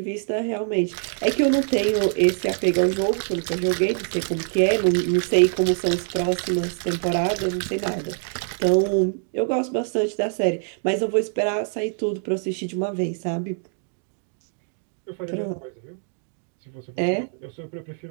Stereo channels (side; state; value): left; silent; 62 dB below the other